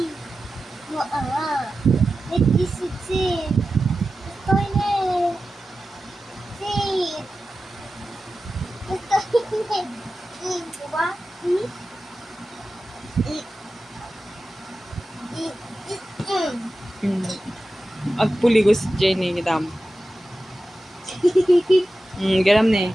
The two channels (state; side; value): normal; both; correlation 0.93